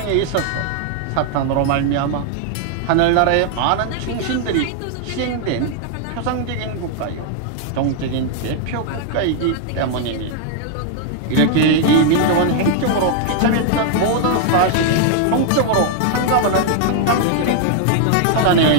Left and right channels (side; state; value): both; different; correlation 0.00